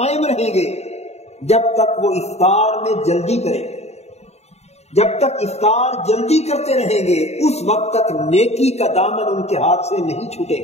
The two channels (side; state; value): right; late; 0.31 ms